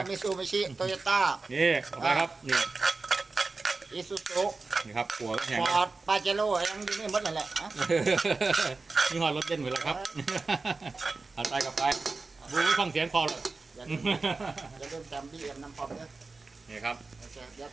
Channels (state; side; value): quieter; left; 3.8 dB